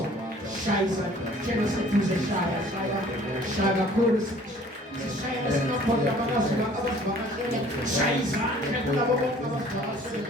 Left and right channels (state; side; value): normal; both; correlation 0.53